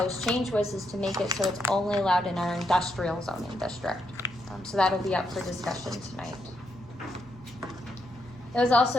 change was is to make it so it's only allowed in our industrial zoning district. So that'll be up for discussion tonight. It was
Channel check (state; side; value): normal; both; correlation 0.80